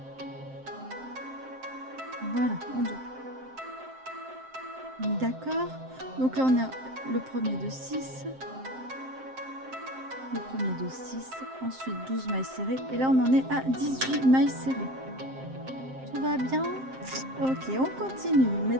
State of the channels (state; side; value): late; left; 7.6 ms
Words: Voilà, on double. D'accord, donc là on a le premier de 6, le premier de 6, ensuite 12 mailles serrées, et là on en est à 18 mailles serrées. Tout va bien? Ok, on continue.